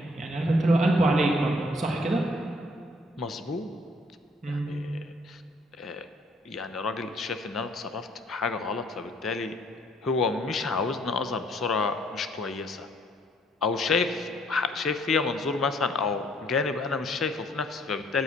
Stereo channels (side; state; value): both; normal; correlation 0.63